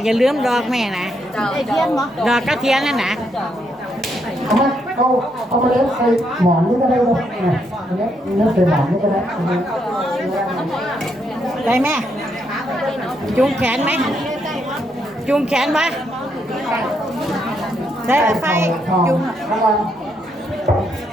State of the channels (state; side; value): normal; both; correlation 0.77